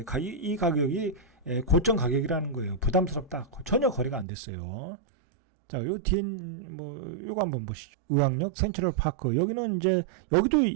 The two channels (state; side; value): drops out; left; at 4.2 s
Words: 이 가격이 고점 가격이라는 거예요. 부담스럽다. 전혀 거래가 안 됐어요. 자, 요 뒤에 요거 한번 보시죠. 의왕역 센트럴 파크. 여기는 이제 여기도